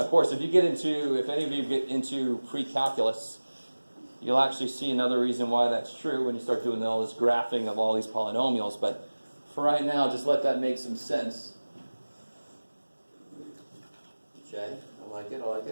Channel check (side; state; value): both; inverted; correlation -1.00